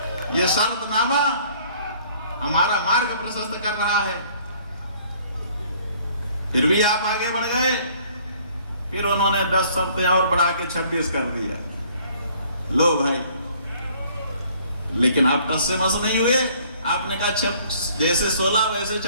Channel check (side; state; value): both; inverted; correlation -0.58